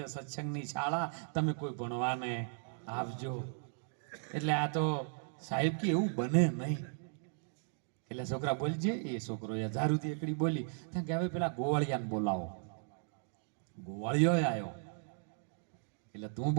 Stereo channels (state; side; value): silent; left; digital silence